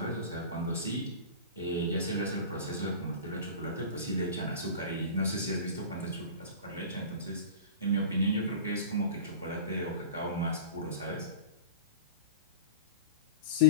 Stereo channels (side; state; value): both; inverted; correlation -0.35